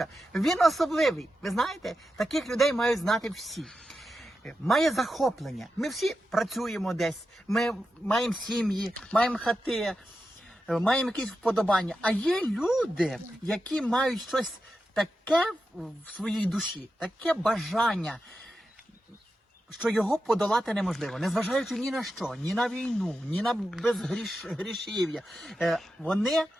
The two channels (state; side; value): normal; both; correlation 0.90